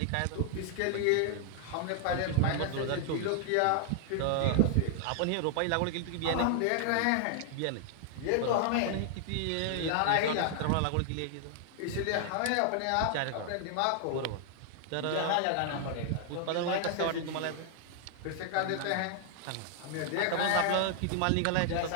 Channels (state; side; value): different; both; correlation 0.00